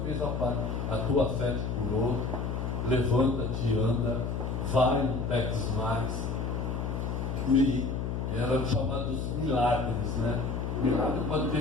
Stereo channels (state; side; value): noise; left; hum, 2 dB below the sound